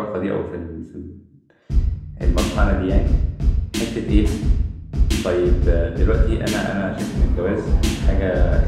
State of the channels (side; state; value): both; identical; correlation 1.00